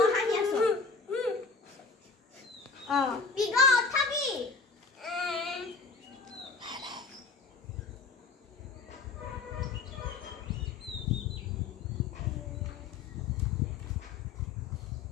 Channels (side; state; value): right; quieter; 4.5 dB